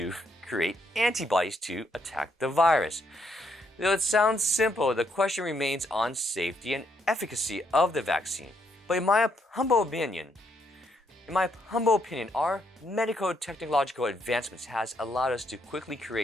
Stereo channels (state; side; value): normal; both; correlation 0.74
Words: create antibodies to attack the virus. Though it sounds simple, the question remains on safety and efficacy of the vaccine. But in my humble opinion, our medical technological advancements has allowed us to quickly